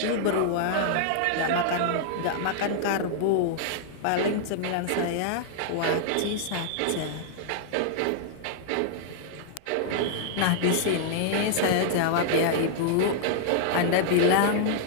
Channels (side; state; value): both; different; correlation -0.01